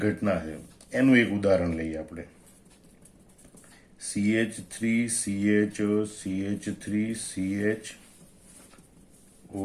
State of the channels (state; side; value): identical; both; correlation 1.00